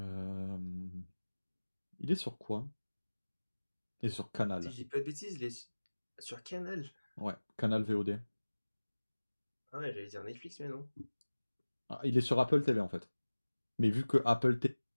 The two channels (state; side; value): inverted; both; correlation -1.00